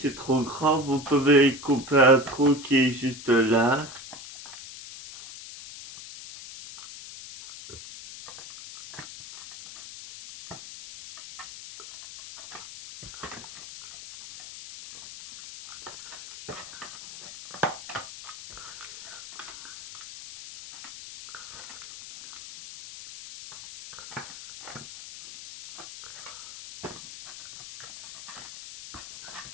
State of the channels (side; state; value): left; noise; hiss, 13 dB below the sound